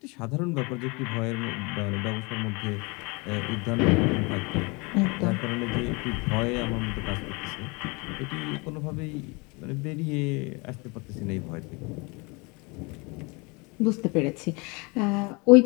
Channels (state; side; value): quieter; right; 28.5 dB